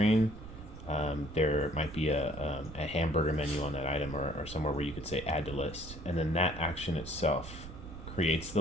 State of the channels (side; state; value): right; noise; rumble, 13 dB below the sound